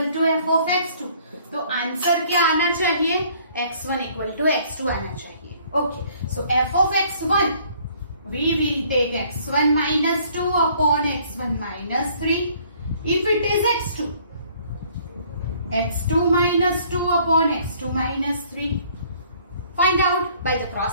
to f of x2. तो answer क्या आना चाहिए? x1 equal to x2 आना चाहिए. Okay, so f of x1, we will take x1 minus 2 upon x1 minus 3. If it is x2, x2 minus 2 upon x2 minus 3. Find out by the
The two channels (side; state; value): both; inverted; correlation -0.59